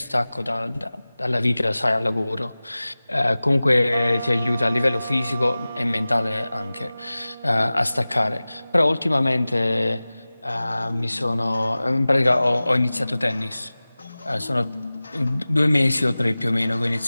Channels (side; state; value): both; inverted; correlation -0.98